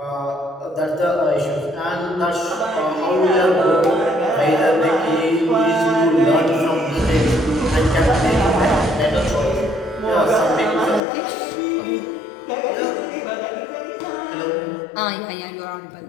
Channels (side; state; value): right; drops out; at 11.0 s